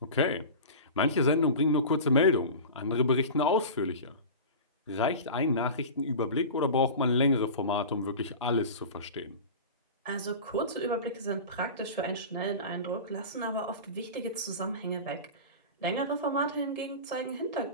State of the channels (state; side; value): inverted; both; correlation -0.32